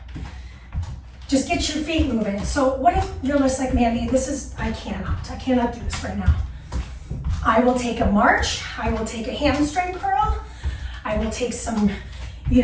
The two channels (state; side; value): identical; both; correlation 1.00